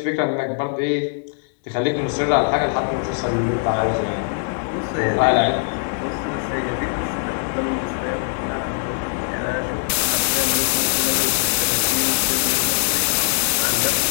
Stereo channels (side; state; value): right; silent; 65 dB below the other